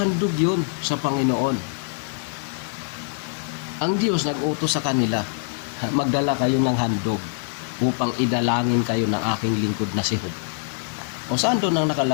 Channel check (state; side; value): silent; right; digital silence